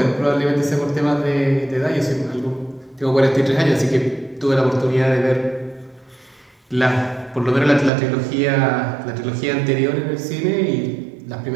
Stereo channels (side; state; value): left; drops out; at 7.9 s